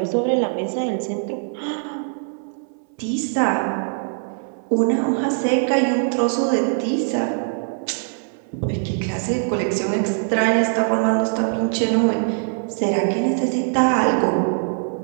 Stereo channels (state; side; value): silent; left; 64 dB below the other